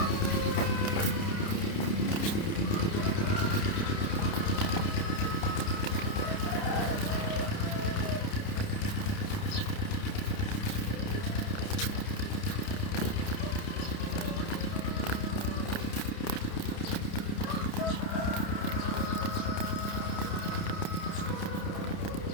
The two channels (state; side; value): late; right; 30 ms